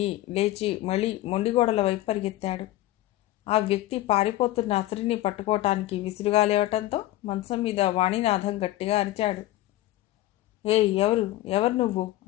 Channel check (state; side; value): quieter; right; 15.8 dB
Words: లేచి మళ్ళీ మొండిగోడల వైపు పరిగెత్తాడు. ఆ వ్యక్తి పారిపోతున్న అసిరిని పట్టుకోవటానికి విసురుగా లేవటంతో మంచం మీద వాణినాథం గట్టిగా అరిచాడు. ఎవరు నువ్వు